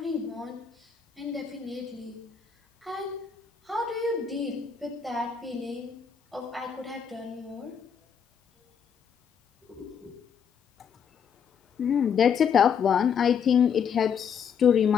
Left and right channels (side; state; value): right; quieter; 7.2 dB